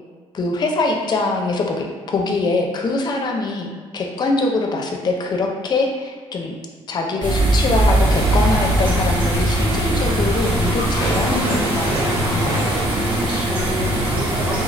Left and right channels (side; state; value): both; normal; correlation 0.63